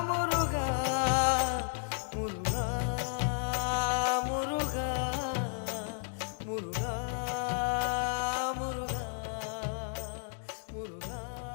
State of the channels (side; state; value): right; silent; digital silence